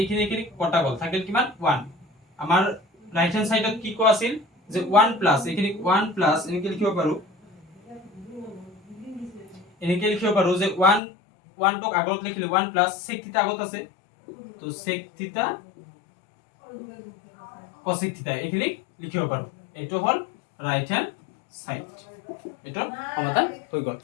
কটা গল, থাকিল কিমান 1, আমাৰ রাইট হ্যান্ড সাইডত কি কো আছিল যে 1 প্লাস এইখিনি 1 প্লাস এনেকে লিখিব পাৰো, এনেকে লিখিব পাৰো যে 1 টক আগত লিখিলে 1 প্লাস sec থিটা আগত আছে, তো sec থিটা cosec থিটা এইখিনি লিখিব পাৰো, এটো হল ৰাইট হ্যান্ড সাইড, এটো সমাধান হৈ গল।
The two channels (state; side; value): drops out; right; at 11.0 s